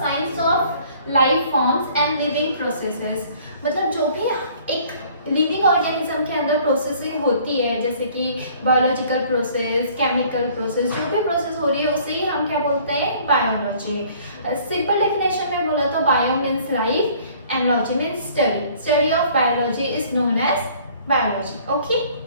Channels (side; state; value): both; inverted; correlation -0.55